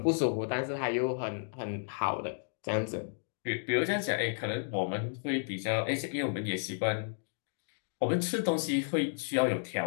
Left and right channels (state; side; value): silent; right; digital silence